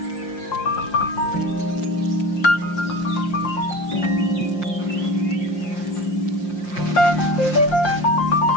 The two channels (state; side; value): late; right; 5.7 ms